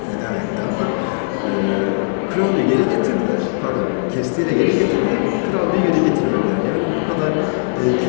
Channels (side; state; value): right; silent; digital silence